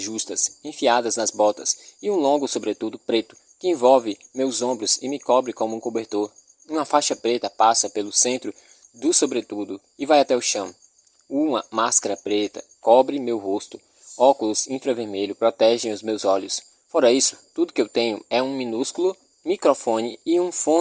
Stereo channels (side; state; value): both; identical; correlation 1.00